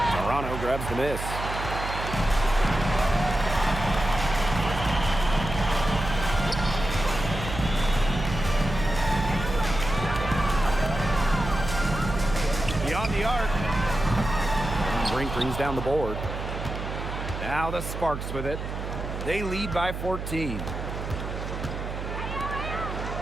Toronto grabs the miss. Beyond the arc. Brink brings down the board. Now the Sparks with it. They lead by 14.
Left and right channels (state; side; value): noise; right; hum, 6 dB below the sound